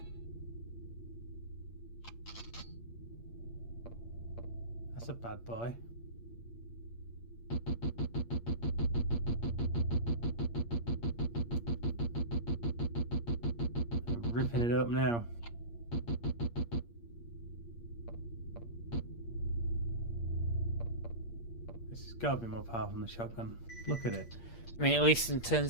That's a bad boy. Ripping it up now. This has got to be more powerful than the shotgun. Look at it. I mean, at least in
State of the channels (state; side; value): late; right; 8.6 ms